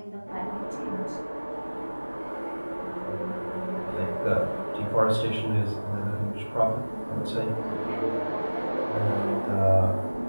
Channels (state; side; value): inverted; both; correlation -1.00